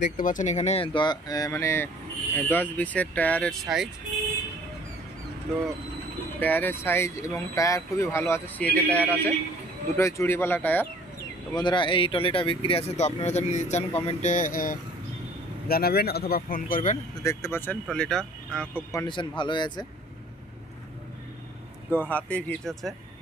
দেখতে পাচ্ছেন এখানে 10-20-এর টায়ারের সাইজ। তো টায়ারের সাইজ এবং টায়ার খুবই ভালো আছে, সিএটের টায়ার আছে, দুটোই চুড়িওয়ালা টায়ার। তো বন্ধুরা, এই ট্রলিটা বিক্রি আছে। তো আপনারা যদি নিতে চান কমেন্টে জানাবেন অথবা ফোন করবেন। তো দেখতে পাচ্ছেন ট্রলিটা খুব কন্ডিশন ভালোই আছে। তো হাতে হিচ আছে।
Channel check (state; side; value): normal; both; correlation 0.53